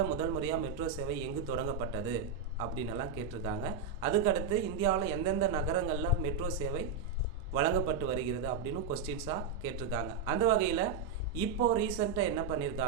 முதல் முறையாக மெட்ரோ சேவை எங்கு தொடங்கப்பட்டது அப்படின்னெல்லாம் கேட்டிருக்காங்க. அதுக்கடுத்து இந்தியாவில் எந்தெந்த நகரங்களில் மெட்ரோ சேவை வழங்கப்பட்டு வருகிறது அப்படின்னு கொஸ்டின்ஸாக கேட்டிருக்காங்க. அந்த வகையில் இப்போது ரீசெண்டாக என்ன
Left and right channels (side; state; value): left; quieter; 5.7 dB